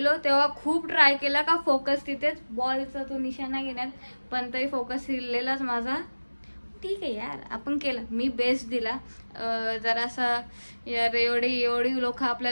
तेव्हा खूप ट्राय केला का फोकस तिथेच बॉलचा तो निशाणा घेण्यात. पण तरी फोकस हिरलेलाच माझा. ठीक आहे यार आपण केलं. मी बेस्ट दिला. जरासा यार एवढी लोक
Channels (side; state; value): both; inverted; correlation -1.00